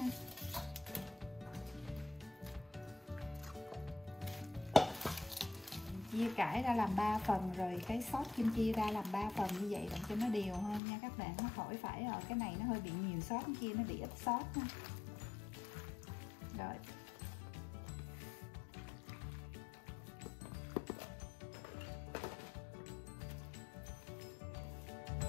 Chia cải ra làm 3 phần, rồi cái sốt kim chi ra làm 3 phần như vậy để cho nó đều hơn nha các bạn. Nó khỏi phải ở cái này nó hơi bị nhiều sốt, cái kia nó bị ít sốt ha. Rồi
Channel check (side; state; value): right; drops out; at 10.8 s